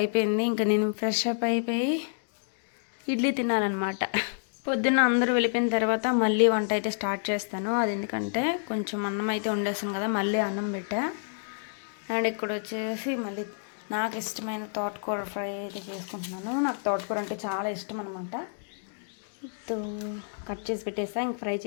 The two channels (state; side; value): silent; right; digital silence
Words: ఇంకా నేను ఫ్రెష్ అప్ అయిపోయి ఇడ్లీ తినాలన్నమాట. పొద్దున్న అందరూ వెళ్ళిపోయిన తర్వాత మళ్ళీ వంట అయితే స్టార్ట్ చేస్తాను. అది ఎందుకంటే కొంచెం అన్నం అయితే వండేస్తాను కదా, మళ్ళీ అన్నం పెట్టా. అండ్ ఇక్కడ వచ్చేసి మళ్ళీ నాకు ఇష్టమైన తోటకూర ఫ్రై అయితే చేసుకుంటున్నాను. నాకు తోటకూర అంటే చాలా ఇష్టం అనమాట. కట్ చేసి పెట్టేసా, ఇంక ఫ్రై